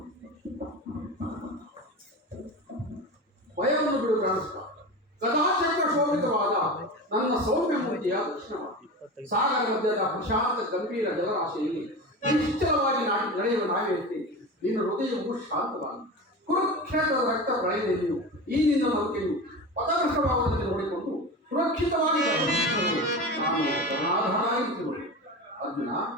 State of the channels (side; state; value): both; normal; correlation 0.28